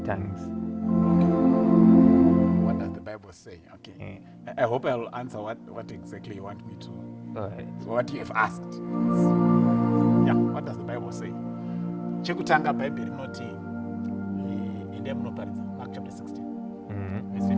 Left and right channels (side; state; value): both; identical; correlation 1.00